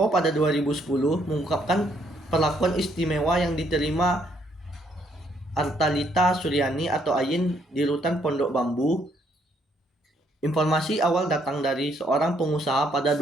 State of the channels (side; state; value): both; normal; correlation 0.70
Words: pada 2010 mengungkapkan perlakuan istimewa yang diterima Artalita Suryani atau Ayin di rutan Pondok Bambu. Informasi awal datang dari seorang pengusaha pada